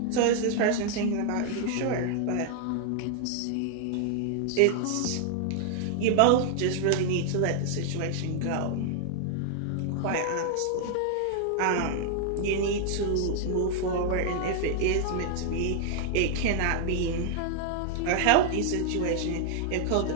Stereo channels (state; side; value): different; both; correlation 0.00